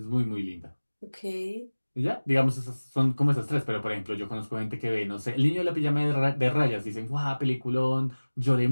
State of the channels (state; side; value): inverted; both; correlation -1.00